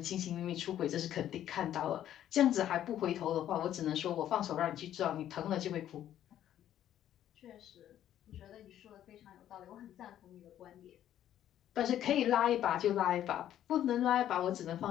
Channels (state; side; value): quieter; right; 11.4 dB